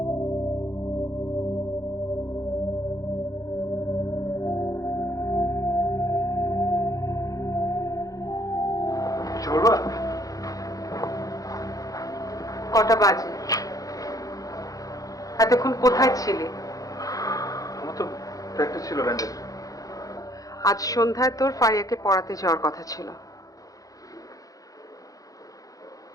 কিছু বলবা? কটা বাজে? এতক্ষণ কোথায় ছিলে? আমার তো প্র্যাকটিস ছিল ব্যান্ডের। আজ সন্ধ্যায় তোর ফারিয়াকে পড়াতে যাওয়ার কথা ছিল।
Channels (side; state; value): right; late; 0.17 ms